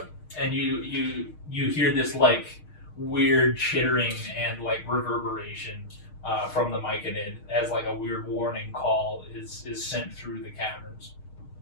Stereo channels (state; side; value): late; right; 6.5 ms